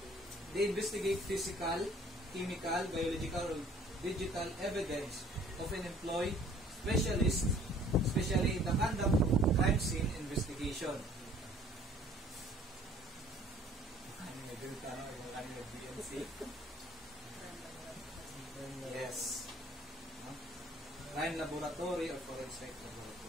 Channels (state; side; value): normal; both; correlation 0.55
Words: They investigate physical, chemical, biological, or digital evidence. Often employ specialists, especially in the conduct of crime scene investigation. Yes. Crime laboratory or forensic